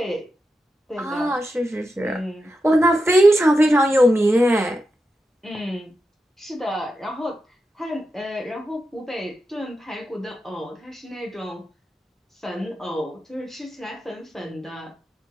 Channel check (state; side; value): normal; both; correlation 0.88